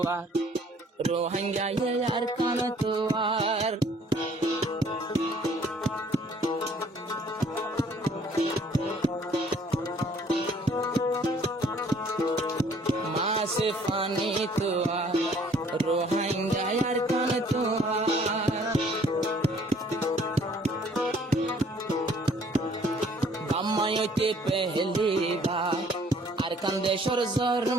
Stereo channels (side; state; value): both; normal; correlation 0.59